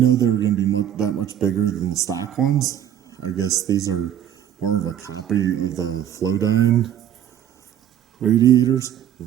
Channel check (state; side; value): quieter; left; 10.4 dB